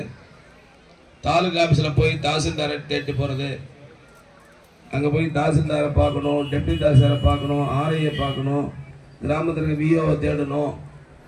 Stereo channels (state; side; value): identical; both; correlation 1.00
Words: தாலுகா ஆஃபீஸில் போய் தாசில்தாரை தேடி போகிறது, அங்கே போய் தாசில்தாரை பார்க்கணும், டெப்டி தாசில்தாரை பார்க்கணும், ஆர்ஐயை பார்க்கணும், கிராமத்திற்கு விஓவை தேடணும்,